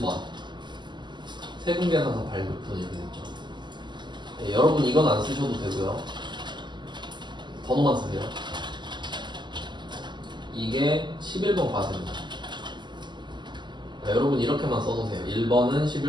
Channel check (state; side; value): late; left; 0.22 ms